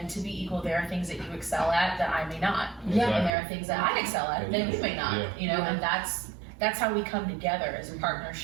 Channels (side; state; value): left; drops out; at 3.3 s